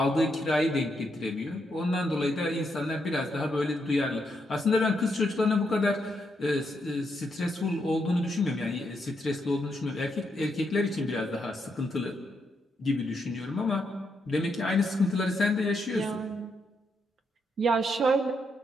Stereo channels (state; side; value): normal; both; correlation 0.80